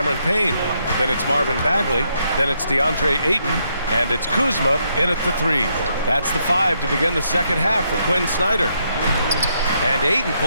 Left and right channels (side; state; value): both; inverted; correlation -0.76